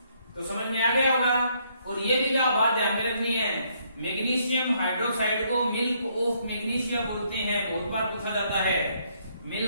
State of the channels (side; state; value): both; inverted; correlation -0.70